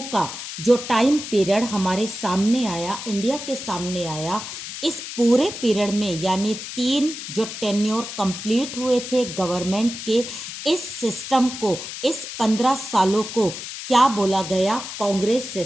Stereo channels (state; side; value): noise; left; hiss, 9 dB below the sound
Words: का जो टाइम पीरियड हमारे सामने आया, इंडिया के सामने आया, इस पूरे पीरियड में यानी 3 जो टेन्योर कंप्लीट हुए थे गवर्नमेंट के, इस सिस्टम को, इस 15 सालों को क्या बोला गया, कांग्रेस